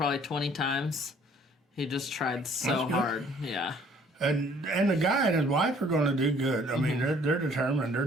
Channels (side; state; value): both; normal; correlation 0.58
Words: 20 times. He just tried so hard. Yeah. And the guy and his wife are going to do good. I mean, they're determined. They're